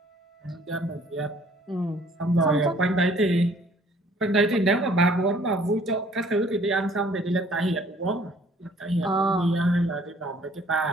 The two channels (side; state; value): both; normal; correlation 0.58